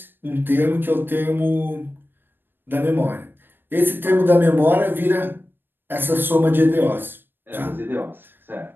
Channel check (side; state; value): left; late; 0.097 ms